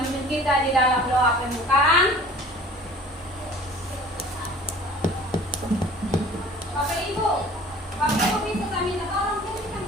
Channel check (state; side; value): normal; both; correlation 0.47